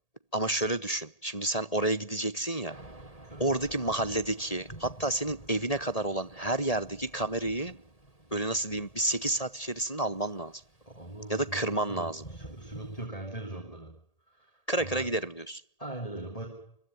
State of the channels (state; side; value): late; right; 1.8 ms